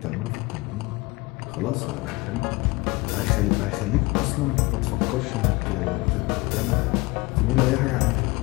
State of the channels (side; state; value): right; quieter; 23.3 dB